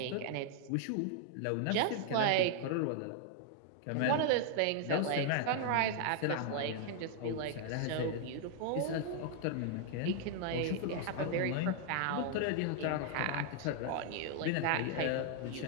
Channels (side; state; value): both; different; correlation 0.00